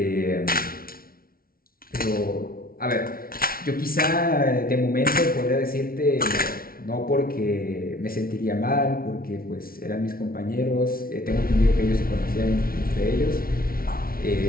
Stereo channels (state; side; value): late; right; 0.43 ms